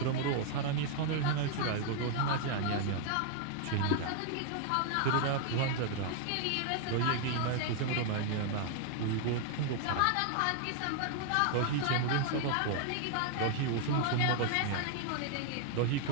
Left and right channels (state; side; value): different; both; correlation 0.00